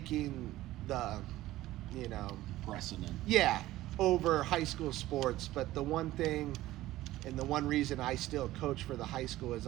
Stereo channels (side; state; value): left; quieter; 16.0 dB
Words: the, precedent. Yeah, over high school sports. But the one thing and the one reason I still coach for the high school is